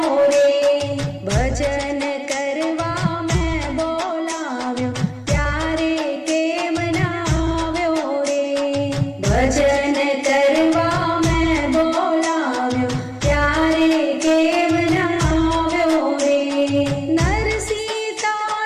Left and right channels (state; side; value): identical; both; correlation 1.00